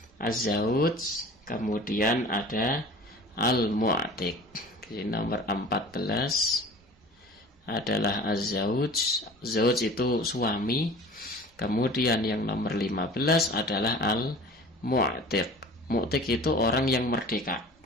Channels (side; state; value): both; normal; correlation 0.42